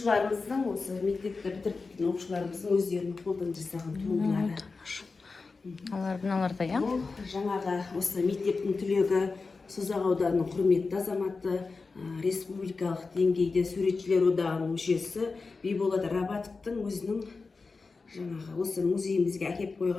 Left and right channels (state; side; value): quieter; right; 4.2 dB